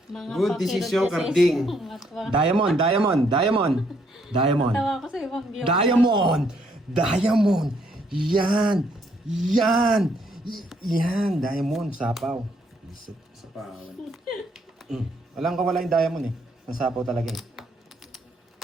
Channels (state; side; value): normal; both; correlation 0.70